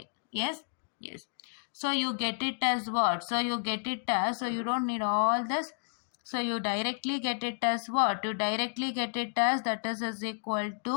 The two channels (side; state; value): right; silent; digital silence